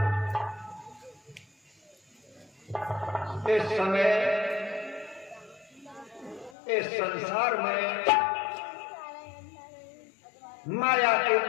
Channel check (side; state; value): right; drops out; at 6.6 s